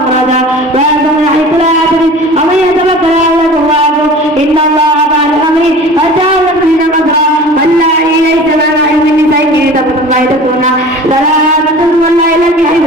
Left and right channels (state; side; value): normal; both; correlation 0.40